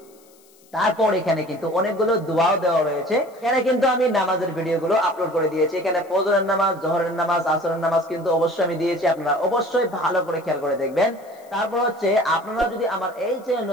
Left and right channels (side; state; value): left; noise; hiss, 29 dB below the sound